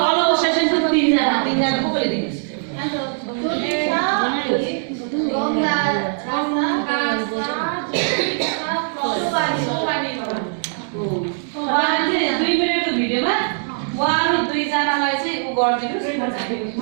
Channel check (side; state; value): left; silent; digital silence